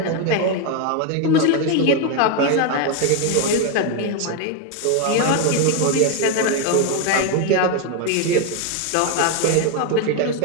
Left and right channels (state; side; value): different; both; correlation 0.01